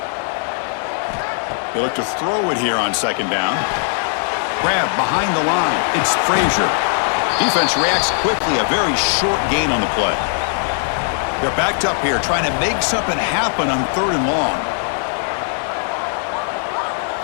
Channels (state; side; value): silent; right; digital silence